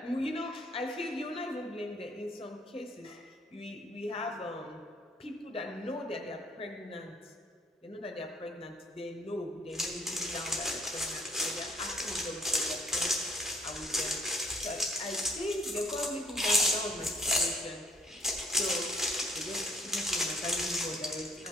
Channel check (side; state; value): both; normal; correlation 0.61